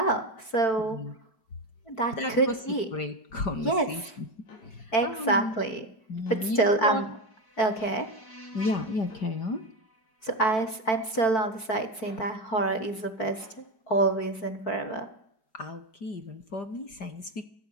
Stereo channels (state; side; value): late; right; 4.5 ms